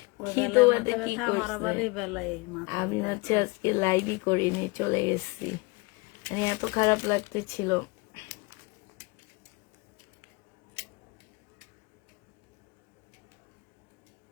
তোমাদের কি করছে? আমি হচ্ছে আজকে লাইভই করিনি, চলে গেছি। এত খারাপ লাগতেছিল।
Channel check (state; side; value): quieter; right; 26.0 dB